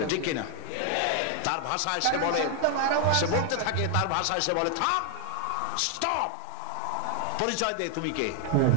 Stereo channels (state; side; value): different; both; correlation 0.01